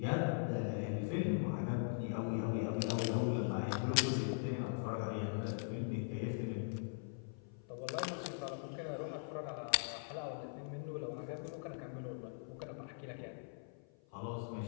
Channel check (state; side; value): silent; right; 50 dB below the other